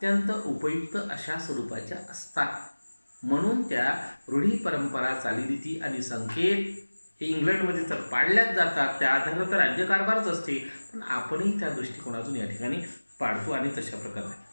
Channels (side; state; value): both; inverted; correlation -1.00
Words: उपयुक्त अशा स्वरूपाच्या असतात. म्हणून त्या रूढी, परंपरा, चालीरीती आणि संकेत हे इंग्लंडमध्ये तर पाळल्याच जातात, त्या आधारावर तर राज्यकारभारच असते. पण आपणही त्या दृष्टिकोनातून या ठिकाणी पाळतो आणि तशा प्रकारे.